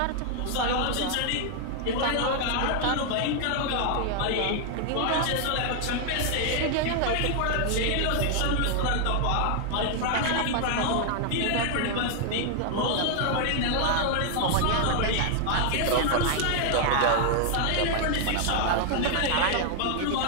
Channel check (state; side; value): different; both; correlation 0.00